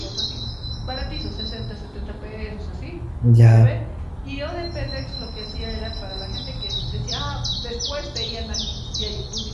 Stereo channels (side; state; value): both; identical; correlation 1.00